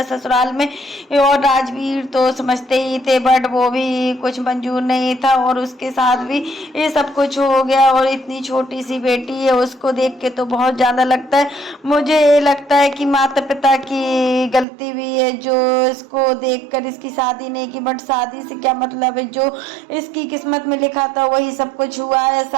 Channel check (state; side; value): drops out; left; at 14.7 s